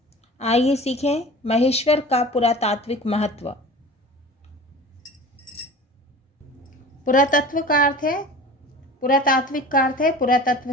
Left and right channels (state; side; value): normal; both; correlation 0.38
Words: आइए सीखें महेश्वर का पुरातात्विक महत्व। पुरातत्व का अर्थ है पुरातात्विक का अर्थ है